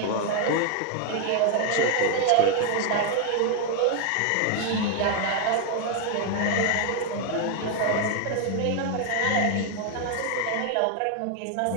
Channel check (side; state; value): both; different; correlation 0.00